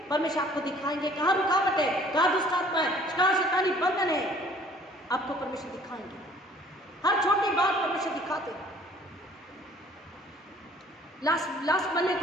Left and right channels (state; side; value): normal; both; correlation 0.55